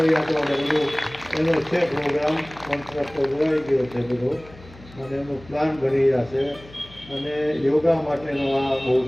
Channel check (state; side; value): noise; left; hum, 21 dB below the sound